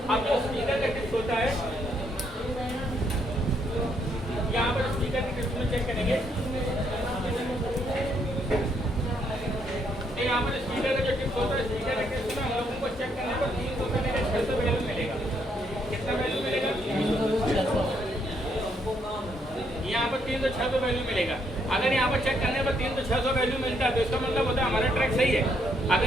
अब जो स्पीकर का टिप्स होता है, यहाँ पर स्पीकर की टिप्स में चेक करेंगे। यहाँ पर स्पीकर का जो टिप्स होता है, स्पीकर के टिप्स में हम लोगों को चेक करने पर 300 से लेकर 600 वैल्यू मिलेगा। कितना वैल्यू मिलेगा, यहाँ पर 3 तो 600 वैल्यू मिलेगा। अगर यहाँ पर चेक करने पर 3 तो 600 वैल्यू मिलता है तो इसका मतलब होता है हमारा ट्रैक सही है।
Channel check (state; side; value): normal; both; correlation 0.73